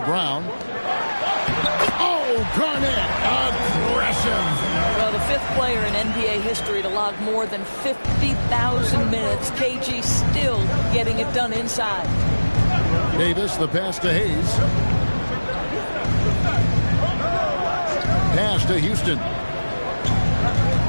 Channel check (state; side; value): inverted; both; correlation -1.00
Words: Brown. Oh, Garnett, aggressive. Well, the 5th player in NBA history to log more than 50,000 minutes. KG still getting it done inside. Davis, the pass to Hayes. Pass to Houston.